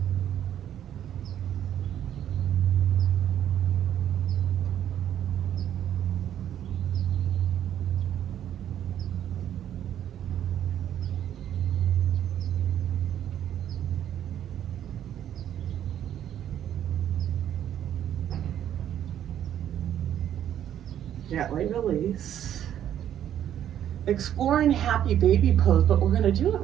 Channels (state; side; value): quieter; left; 10.6 dB